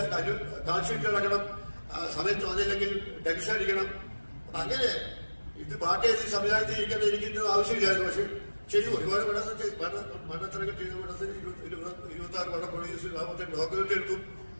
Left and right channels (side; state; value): both; inverted; correlation -1.00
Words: കാൽഷീറ്റ് നടക്കണം, സമയത്ത് വന്നില്ലെങ്കിൽ ടെൻഷൻ അടിക്കണം. അപ്പൊ അങ്ങനെ ഇത് പാട്ട് എഴുതി സംവിധാനം ചെയ്യിക്കാൻ എനിക്കിന്റെ ആവശ്യമില്ലായിരുന്നു. പക്ഷെ ശരി, ഒരുപാട് മണ്ണത്തിനൊക്കെ ചെയ്ത പടത്തിന് 26 പടം പ്രൊഡ്യൂസ് 45 ഡോക്യുമെന്റ് എടുത്തു.